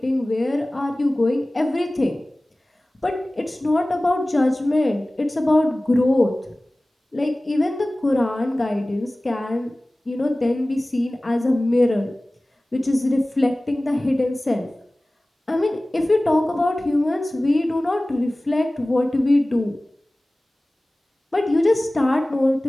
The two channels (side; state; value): both; normal; correlation 0.98